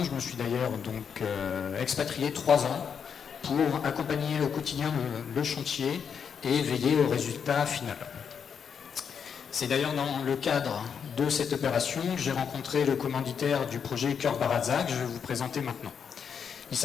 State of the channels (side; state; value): right; quieter; 7.0 dB